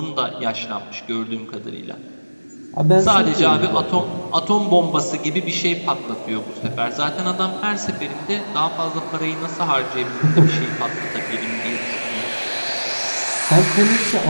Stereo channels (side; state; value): both; inverted; correlation -1.00